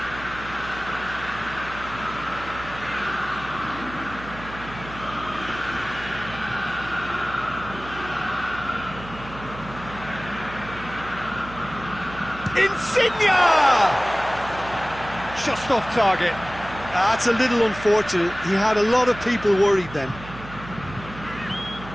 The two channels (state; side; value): noise; right; hum, 14 dB below the sound